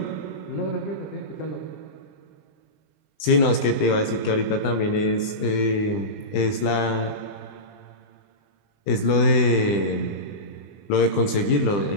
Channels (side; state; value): right; late; 20 ms